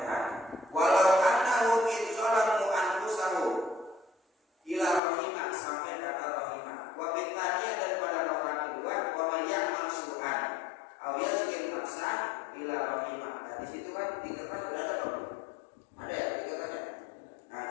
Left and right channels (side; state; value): right; drops out; at 5.0 s